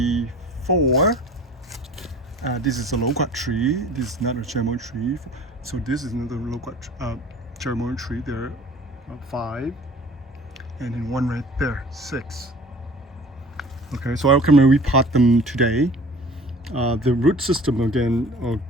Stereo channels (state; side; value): normal; both; correlation 0.45